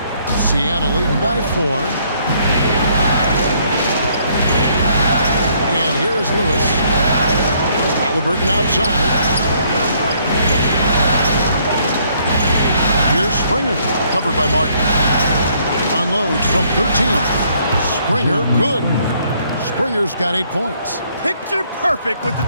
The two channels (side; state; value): both; inverted; correlation -0.66